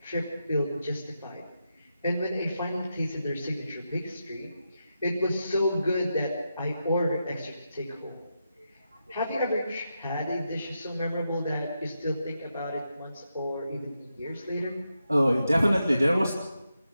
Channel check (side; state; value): both; inverted; correlation -0.86